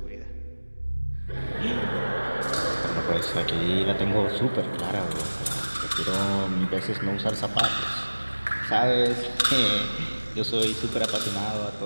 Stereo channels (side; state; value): both; inverted; correlation -1.00